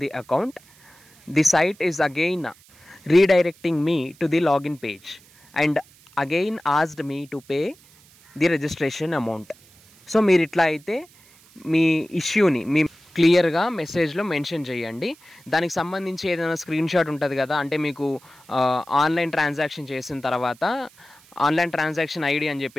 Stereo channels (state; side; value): noise; right; hiss, 27 dB below the sound